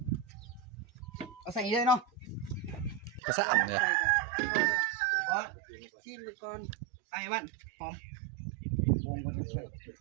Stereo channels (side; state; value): left; drops out; at 3.2 s